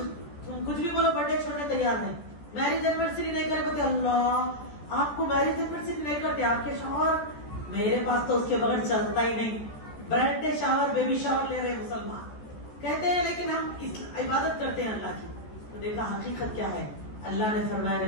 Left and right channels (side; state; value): right; late; 14 ms